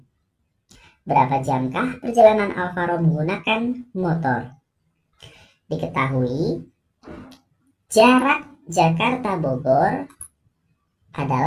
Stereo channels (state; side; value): identical; both; correlation 1.00